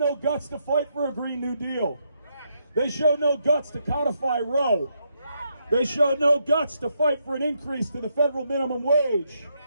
guts to fight for a Green New Deal. They showed no guts to codify Roe. They showed no guts to fight for an increase to the federal minimum wage.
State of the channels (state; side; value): inverted; both; correlation -0.78